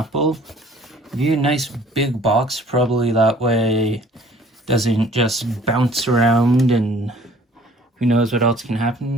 give you a nice big box, probably that way it doesn't just bounce around and who knows what else can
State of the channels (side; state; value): both; normal; correlation 0.54